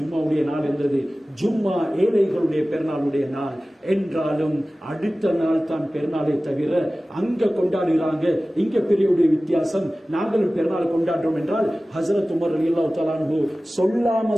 நாள் இருந்தது. ஜும்மா ஏழைகளுடைய பெருநாளுடைய நாள் என்றாலும் அடுத்த நாள் தான் பெருநாளை தவிர அங்க கொண்டாடுகிறாங்க, இங்க பெரியவுடைய வித்தியாசம், நாங்களும் பெருநாள் கொண்டாடுறோம் என்றால் ஹஸரத் உமர் ரலியல்லாஹு தஆலா அன்ஹு சொல்லாம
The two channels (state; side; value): normal; both; correlation 0.97